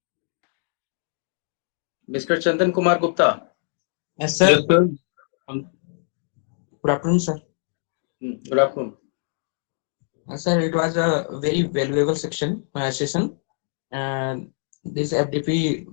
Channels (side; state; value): right; silent; 63 dB below the other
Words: Mr. Chandan Kumar Gupta. Yes, sir. Yes, sir. Good afternoon, sir. Good afternoon. Sir, it was a very valuable session. This FDP